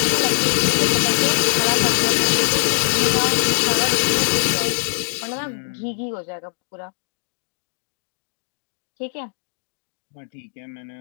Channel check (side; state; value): right; silent; digital silence